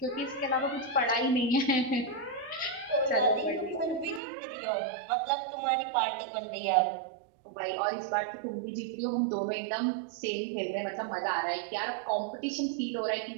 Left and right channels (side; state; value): left; drops out; at 4.2 s